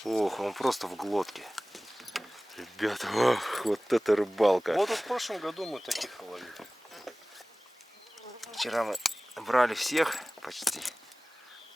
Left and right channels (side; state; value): both; normal; correlation 0.98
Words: Ох, он просто в глотке. Ребята, ох, вот это рыбалка. Вот в прошлом году мы таких ловили. Вчера мы брали всех почти.